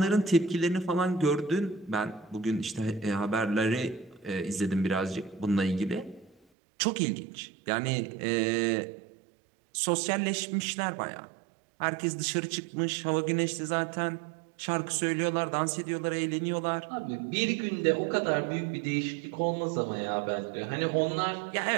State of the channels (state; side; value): drops out; left; at 6.4 s